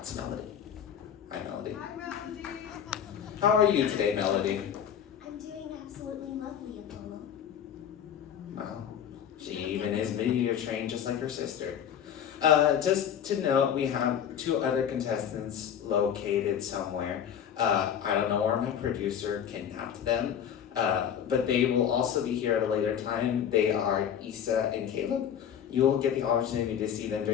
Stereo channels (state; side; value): quieter; right; 8.8 dB